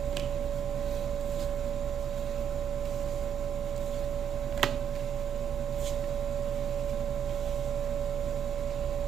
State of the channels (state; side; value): quieter; left; 8.8 dB